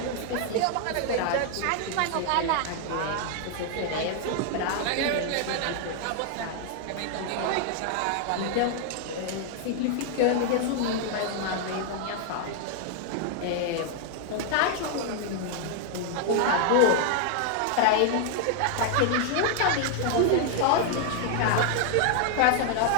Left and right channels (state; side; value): different; both; correlation 0.00